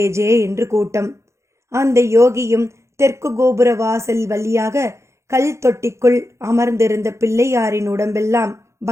ஜே என்று கூட்டம். அந்த யோகியும் தெற்கு கோபுர வாசல் வழியாக கல் தொட்டிக்குள் அமர்ந்திருந்த பிள்ளையாரின் உடம்பெல்லாம்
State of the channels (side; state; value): left; late; 0.14 ms